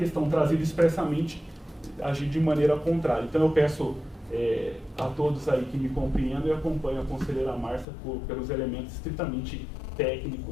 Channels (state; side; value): drops out; right; at 7.9 s